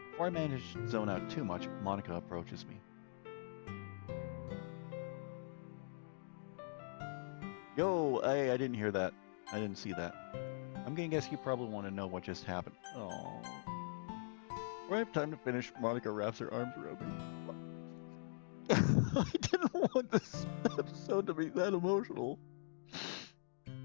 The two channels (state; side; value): silent; right; digital silence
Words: Before I manage to zone out too much, Monika approaches me. Yo, I didn't hear that. I didn't see that. I'm gonna guess you probably want to know what just happened. Oh. Do I have time to finish? Monika wraps her arms around me. I didn't want this episode to be that emotional.